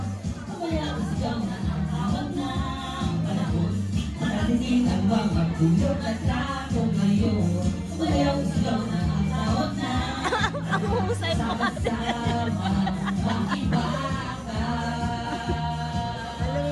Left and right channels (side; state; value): both; identical; correlation 1.00